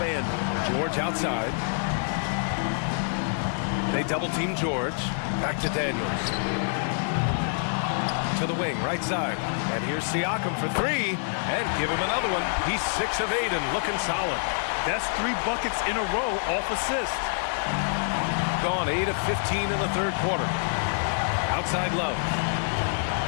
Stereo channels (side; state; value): right; silent; digital silence